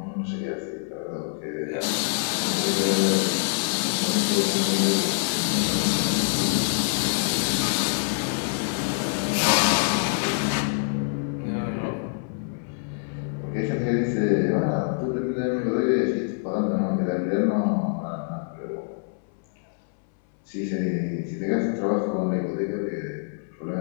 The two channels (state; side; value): silent; right; 61 dB below the other